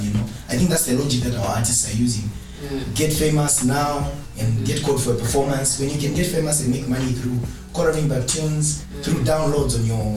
I think that's the logic that our artists are using. Get famous now and get called for a performance. When you can get famous and make money through coloring back tunes, through downloads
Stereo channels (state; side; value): identical; both; correlation 1.00